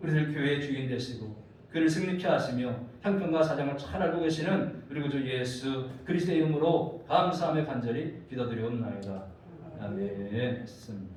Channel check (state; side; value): identical; both; correlation 1.00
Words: 교회의 주인 되시고 그를 승리케 하시며 형편과 사정을 잘 알고 계시는 우리 구주 예수 그리스도의 이름으로 감사하며 간절히 기도드리옵나이다. 아멘.